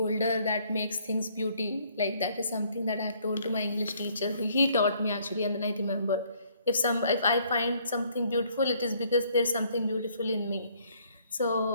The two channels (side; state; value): both; inverted; correlation -0.64